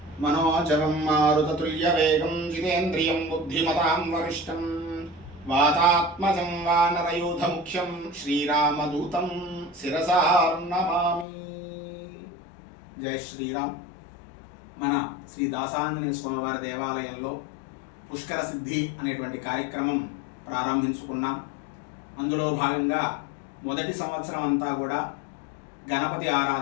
मनोजवं मारुततुल्यवेगं जितेन्द्रियं बुद्धिमतां वरिष्ठं वातात्मजं वानरयूथमुख्यं श्रीरामदूतं शिरसा नमामि। జై శ్రీరామ్. మన శ్రీ దాసాంజనేయ స్వామివారి దేవాలయంలో పుష్కర సిద్ధి అనేటువంటి కార్యక్రమం ప్రారంభించుకున్నాం. అందులో భాగంగా మొదటి సంవత్సరం అంతా కూడా గణపతి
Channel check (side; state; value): right; drops out; at 11.2 s